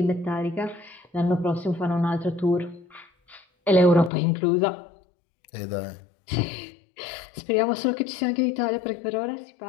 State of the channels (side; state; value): right; drops out; at 4.1 s